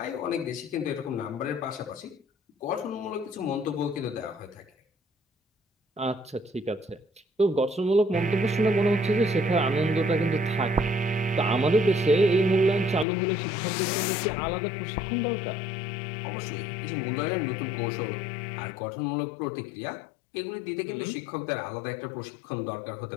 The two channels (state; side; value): drops out; right; at 13.1 s